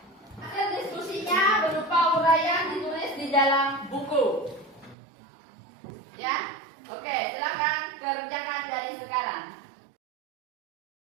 Hasil diskusinya berupa uraian ditulis di dalam buku. Ya? Oke, silakan kerjakan dari sekarang.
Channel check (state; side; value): drops out; left; at 5.0 s